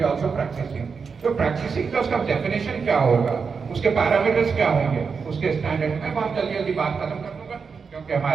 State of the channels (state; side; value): quieter; left; 5.5 dB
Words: also practising. तो प्रैक्टिसिंग का उसका डेफिनेशन क्या होगा, उसके पैरामीटर्स क्या होंगे, उसके स्टैंडर्ड। मैं बहुत जल्दी जल्दी बात खत्म कर दूंगा क्योंकि